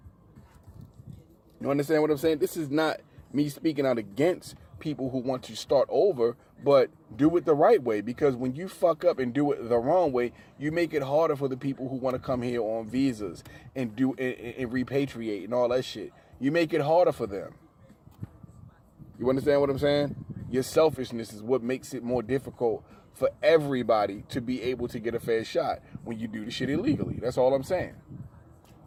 You understand what I'm saying? This is not me speaking out against people who want to start over, but do it the right way. Because when you fuck up and do it the wrong way, you make it harder for the people who want to come here on visas and repatriate and all that shit. You make it harder for them. You understand what I'm saying? Your selfishness is what makes it more difficult for everybody to be able to get a fair shot when you do the shit illegally. That's all I'm saying.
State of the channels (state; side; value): identical; both; correlation 1.00